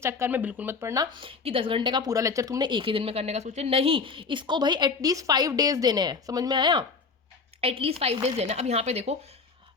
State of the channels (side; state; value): right; quieter; 4.8 dB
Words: चक्कर में बिल्कुल मत पढ़ना कि 10 घंटे का पूरा लेक्चर तुमने एक ही दिन में करने का सोचे, नहीं, इसको भाई एटलीस्ट 5 डेज देने हैं, समझ में आया, एटलीस्ट 5 डेज देना। अब यहाँ पे देखो,